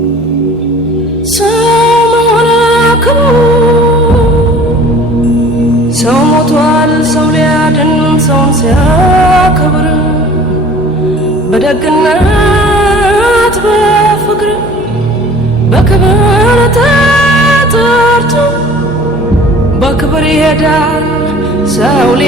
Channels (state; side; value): normal; both; correlation 0.47